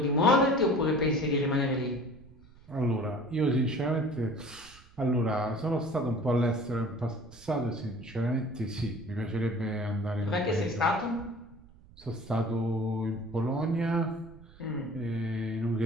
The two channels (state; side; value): noise; right; rumble, 23 dB below the sound